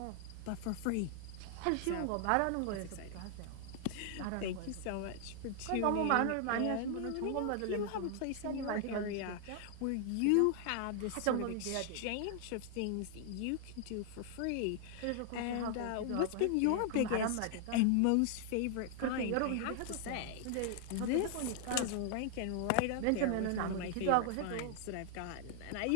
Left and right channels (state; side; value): different; both; correlation 0.00